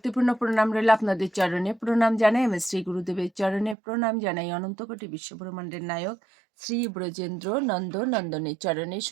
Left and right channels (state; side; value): drops out; left; at 3.8 s